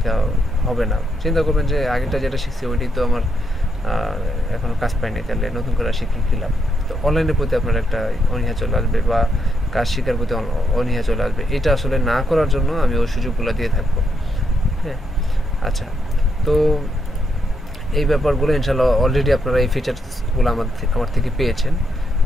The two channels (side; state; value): both; normal; correlation 0.79